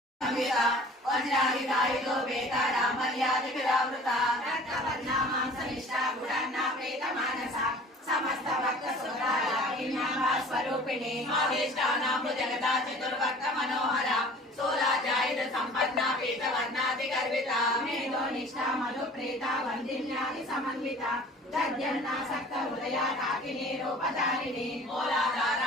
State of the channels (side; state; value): both; normal; correlation 0.46